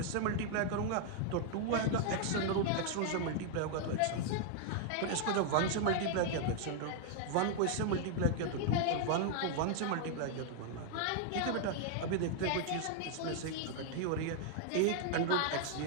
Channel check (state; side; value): different; both; correlation 0.00